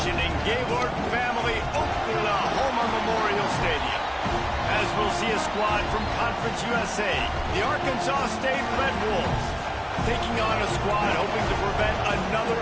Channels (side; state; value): both; identical; correlation 1.00